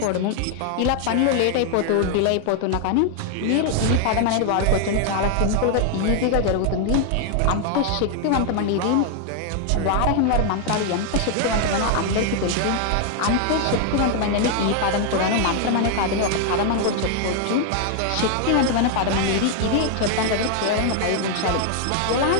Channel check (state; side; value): different; both; correlation 0.00